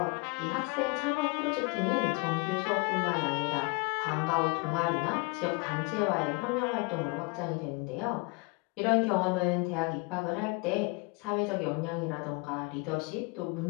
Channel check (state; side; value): quieter; right; 28.2 dB